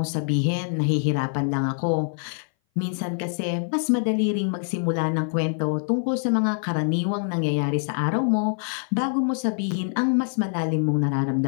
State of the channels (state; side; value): silent; right; 59 dB below the other